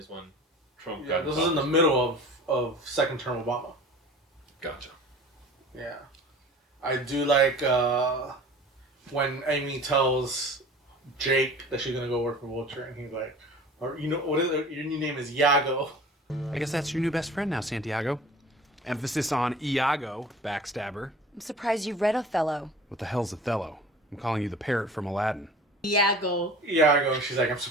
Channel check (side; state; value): both; normal; correlation 0.42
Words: when Trump Yeah, got this was in the middle of second term Obama. Gotcha. Yeah. I do like when Amy tells Jake that she's gonna go work for Vulture, and he's like, or you know, what is it? Your new name is Iago. I guess that's your new best friend now, Santiago. Emphasis on Iago, backstabber. I'm surprised you read Othello. What the hell's Othello? I'm calling you the parrot from Aladdin. Iago. Iago. She's like, I'm